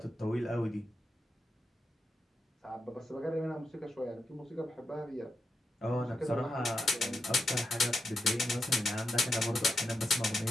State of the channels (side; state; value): both; normal; correlation 0.86